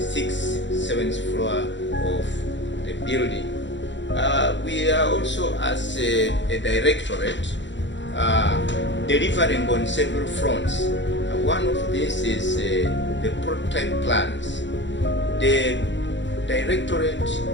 7th floor of the building. We are also, as a directorate, delivering on several fronts. One of these is the prototype plans. The directorate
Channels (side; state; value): right; late; 0.53 ms